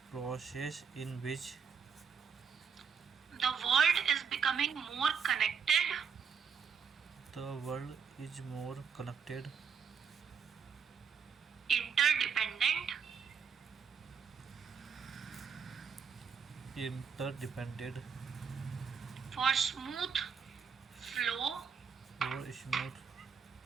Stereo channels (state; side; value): quieter; left; 6.4 dB